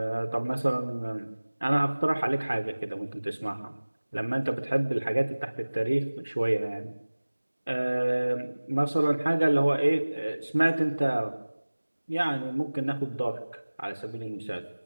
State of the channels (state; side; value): inverted; both; correlation -1.00